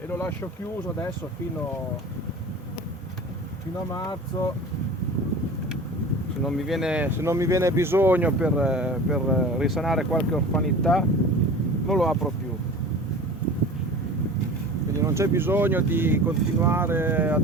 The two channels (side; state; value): both; normal; correlation 0.38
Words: lo lascio chiuso adesso fino a marzo. Se non mi viene bisogno per risanare qualche orfanità, non lo apro più. Quindi non c'è bisogno di continuare